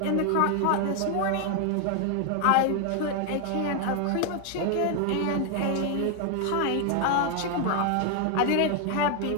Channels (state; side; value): different; both; correlation 0.00